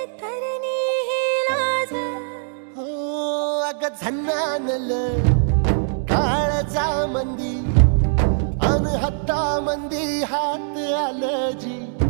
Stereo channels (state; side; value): silent; left; digital silence